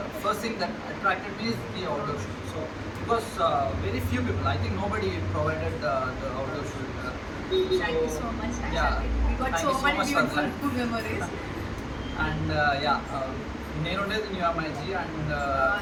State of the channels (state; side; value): identical; both; correlation 1.00